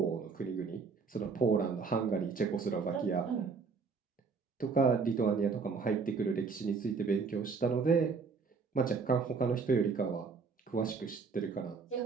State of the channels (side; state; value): left; quieter; 5.0 dB